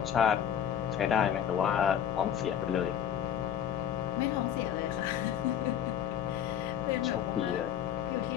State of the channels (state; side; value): quieter; right; 9.6 dB